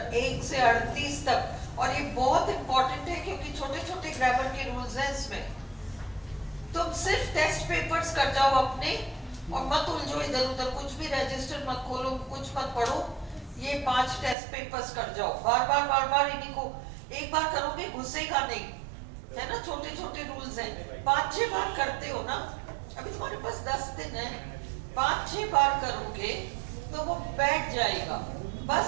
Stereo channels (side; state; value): left; drops out; at 14.4 s